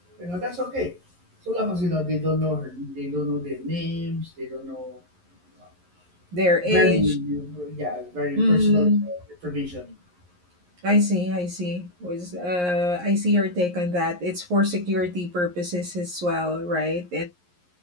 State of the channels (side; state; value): left; late; 11 ms